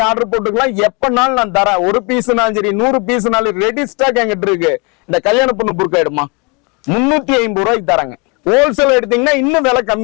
ஆர்டர் போட்டுக்கலாம். எப்பனாலும் நான் தரேன். 1 பீஸ்னாலும் சரி, 100 பீஸ்னாலும் ரெடி ஸ்டாக் என்கிட்ட இருக்கு. இந்த கல்யாண பொண்ணு புர்கா எடுமா 350 ரூபாய்க்கு தராங்க. ஹோல்சேல் எடுத்தீங்கன்னா இன்னும் விலை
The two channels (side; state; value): right; quieter; 30.1 dB